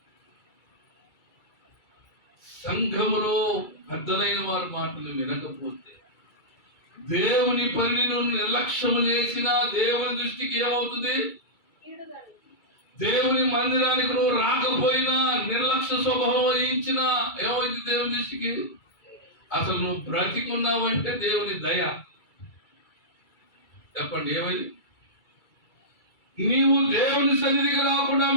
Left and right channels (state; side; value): late; right; 2.3 ms